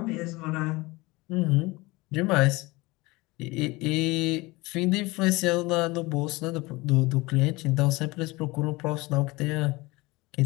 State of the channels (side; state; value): right; quieter; 22.5 dB